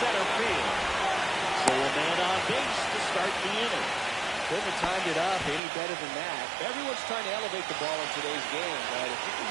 field. So a man on base to start the inning. Couldn't have timed it up any better than that. Everyone's trying to elevate the ball in today's game, but if you can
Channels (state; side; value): drops out; left; at 5.6 s